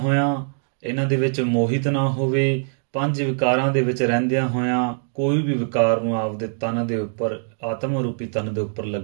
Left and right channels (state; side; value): silent; left; digital silence